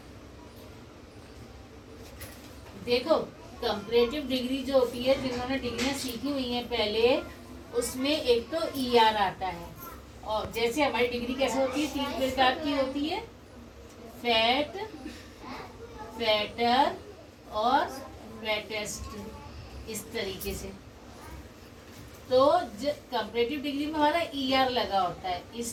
देखो, कंपैरेटिव डिग्री जो होती है, जिन्होंने डिग्रियां सीखी हुई हैं पहले, उसमें एक तो ER आता है। और जैसे हमारी डिग्री कैसे होती है, 3 प्रकार की होती है, फैट, फैटर और फैटेस्ट, इस तरीके से। तो कंपैरेटिव डिग्री में हमारा ER लगा होता है।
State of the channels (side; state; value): both; identical; correlation 1.00